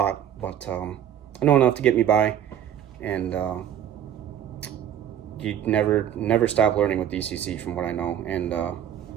but I know enough to get me by, and you never stop learning with DCC from what I know. And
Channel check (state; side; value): quieter; left; 10.1 dB